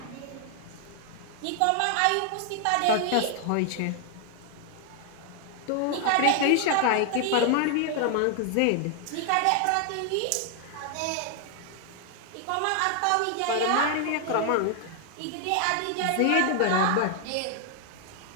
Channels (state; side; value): different; both; correlation 0.00